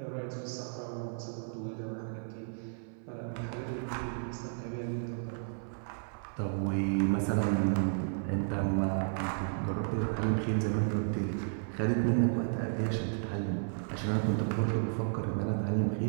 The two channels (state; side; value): silent; left; 56 dB below the other